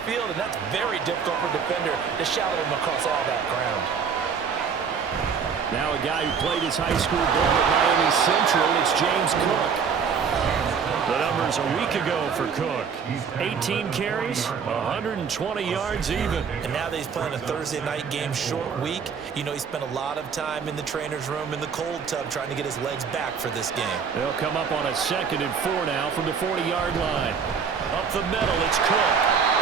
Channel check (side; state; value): left; quieter; 6.4 dB